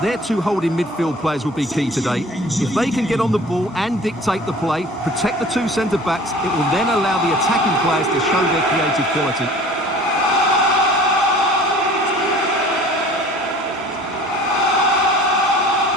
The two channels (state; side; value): normal; both; correlation 0.46